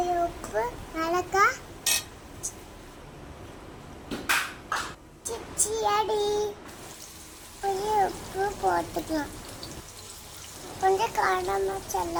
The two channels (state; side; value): identical; both; correlation 1.00